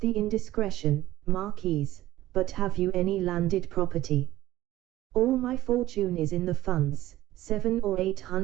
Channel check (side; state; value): left; quieter; 15.0 dB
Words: indiscretion, Marquise, but have you any landed property?" "All my fortune is in the funds, 700,000 or